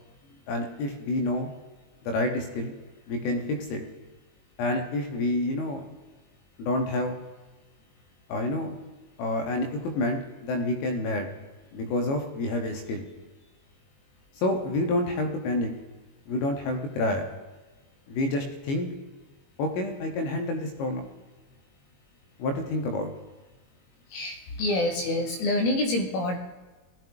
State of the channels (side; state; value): right; late; 22 ms